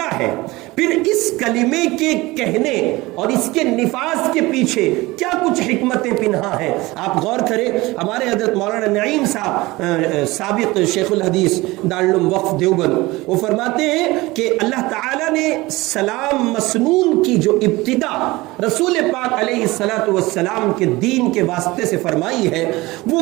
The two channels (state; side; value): quieter; left; 20.8 dB